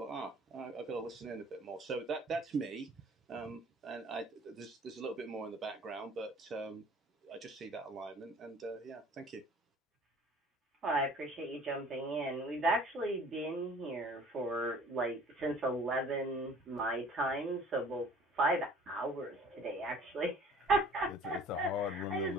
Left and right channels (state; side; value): normal; both; correlation 0.51